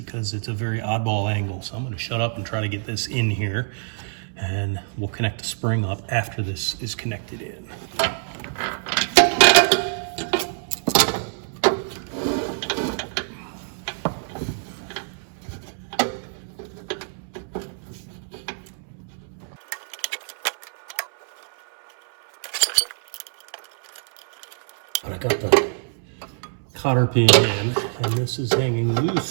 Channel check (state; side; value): silent; left; 62 dB below the other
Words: it's a very oddball angle. So I'm going to shut up and try to get this in here, and we'll connect the spring up after this is connected in. But I got the cotter pin in, and this is hanging